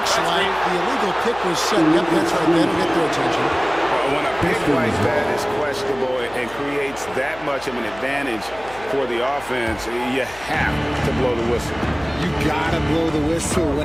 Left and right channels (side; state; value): left; noise; hum, 20 dB below the sound